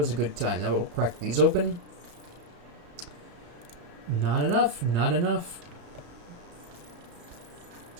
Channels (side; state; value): left; late; 34 ms